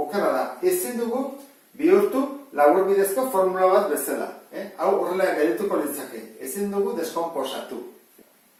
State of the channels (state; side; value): identical; both; correlation 1.00